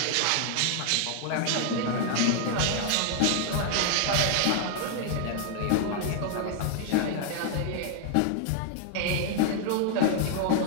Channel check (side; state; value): both; different; correlation 0.00